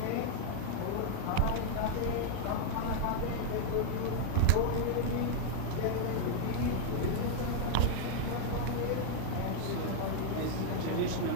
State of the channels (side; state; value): both; different; correlation -0.01